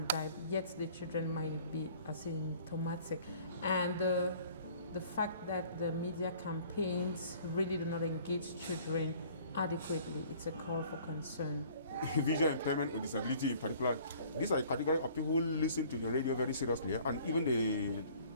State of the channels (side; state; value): both; inverted; correlation -0.53